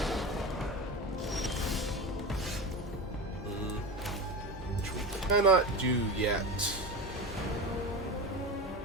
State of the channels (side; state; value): both; normal; correlation 0.25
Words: Which we cannot do yet.